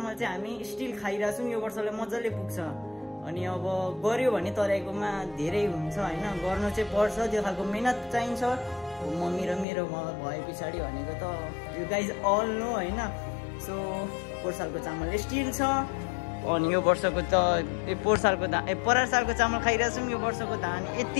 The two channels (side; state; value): right; drops out; at 9.7 s